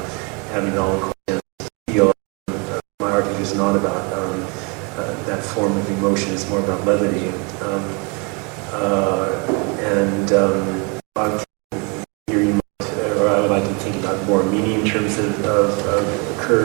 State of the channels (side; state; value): left; quieter; 31.9 dB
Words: having it all in steel. My artwork is not about that form of emotion. It's more about levity. Here you might, or I would like to think about more meaning in terms of